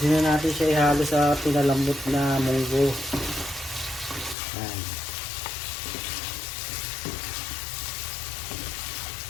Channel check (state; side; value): drops out; right; at 4.4 s